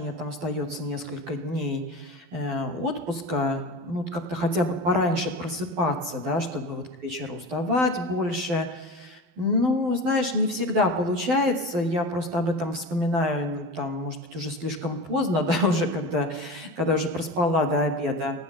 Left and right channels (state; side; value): late; left; 12 ms